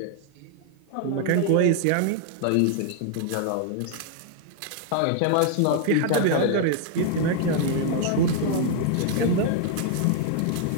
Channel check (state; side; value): different; both; correlation 0.00